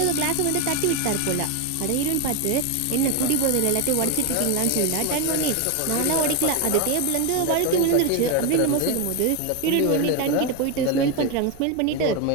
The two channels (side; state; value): both; different; correlation 0.02